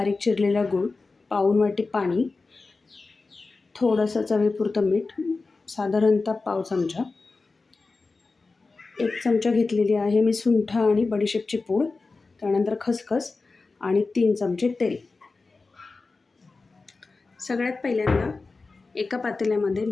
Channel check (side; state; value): right; quieter; 3.9 dB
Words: चिरलेला गूळ, पाऊण वाटी पाणी, थोडंसं चवीपुरतं मीठ, साधारणतः पाव चमचा, 1 चमचा घेतलेली आहे मी सुंठ आणि बडीशेपची पूड, त्यानंतर खसखस आणि 3 चमचे तेल. सगळ्यात पहिल्यांदा एका पातेल्यामध्ये